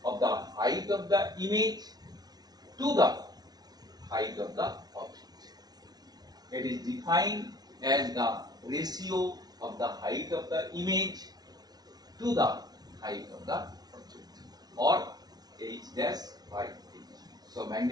of the height of the image to the height of the object. It is defined as the ratio of the height of the image to the height of the object, or h dash by h. So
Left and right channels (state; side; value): late; left; 0.19 ms